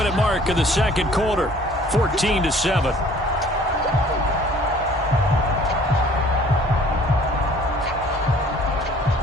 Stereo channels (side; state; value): both; normal; correlation 0.53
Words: mark of the 2nd quarter, 14-7.